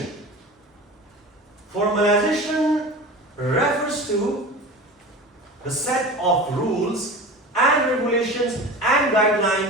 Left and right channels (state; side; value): normal; both; correlation 0.33